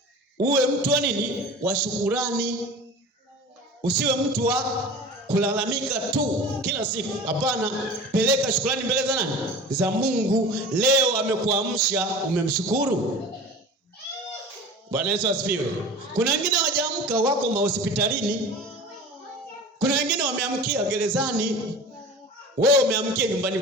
Uwe mtu wa nini? Wa shukurani. Usiwe mtu wa kulalamika tu kila siku. Hapana, peleka shukrani mbele za nani? Za Mungu. Leo amekuamsha, umemshukuru? Bwana Yesu asifiwe. Kuna wengine hawajaamka, wako mahospitalini. Kuna wengine wameamkia gerezani. Wewe umeamkia nyumbani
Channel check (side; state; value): both; normal; correlation 0.37